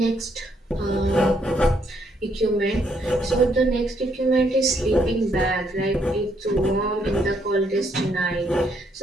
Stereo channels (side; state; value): both; normal; correlation 0.72